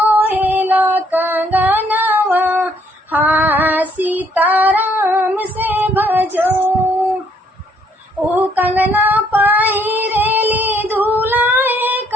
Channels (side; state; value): both; normal; correlation 0.67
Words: कंगनवा, हाँ सीताराम से भजो। ओ कंगना पहिरेली दूल्हे